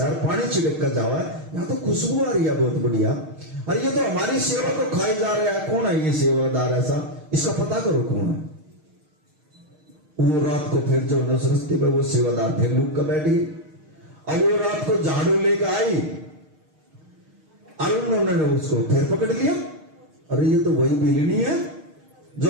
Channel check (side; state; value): left; late; 6.5 ms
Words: यार, पानी छिड़क कर जावा, यहाँ तो खुशबू आ रही है बहुत बढ़िया। अरे ये तो हमारी सेवा को खाई जा रहा है, कौन है ये सेवादार ऐसा, इसका पता करो कौन है। वो रात को फिर जो उस रास्ते पे वो सेवादार फिर लुक कर बैठी। अब वो रात को झाड़ू लेकर आई और उन्होंने उसको फिर पकड़ लिया। अरे ये तो वही बिलनी है